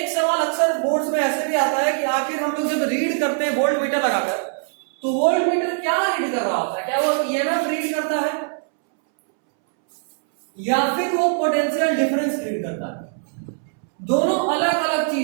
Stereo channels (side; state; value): left; silent; 64 dB below the other